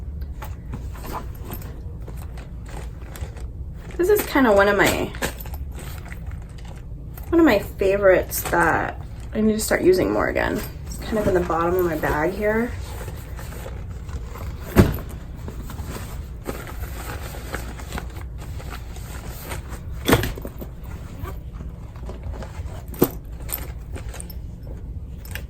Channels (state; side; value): identical; both; correlation 1.00